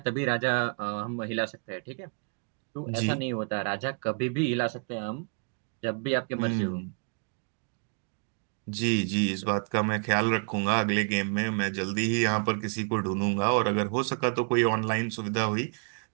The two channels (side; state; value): left; quieter; 38.7 dB